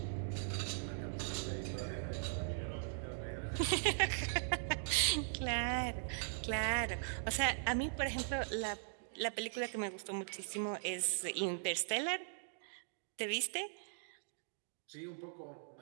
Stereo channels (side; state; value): left; silent; digital silence